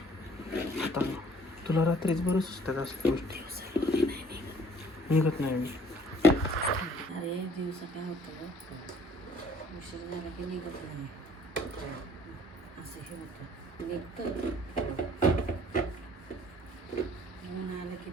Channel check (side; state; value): both; normal; correlation 0.57